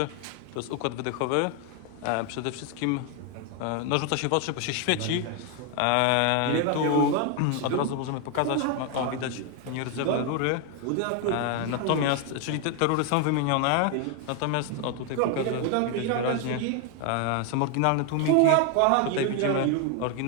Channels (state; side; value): different; both; correlation 0.01